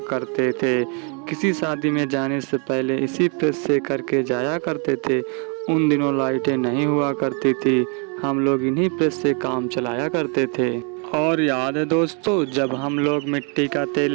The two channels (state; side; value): quieter; left; 36.8 dB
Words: करते थे, किसी शादी में जाने से पहले इसी प्रेस से करके जाया करते थे। उन दिनों लाइटें नहीं हुआ करती थी, हम लोग इन्हीं प्रेस से काम चलाया करते थे। और याद है दोस्तों जब हम लोग मिट्टी का तेल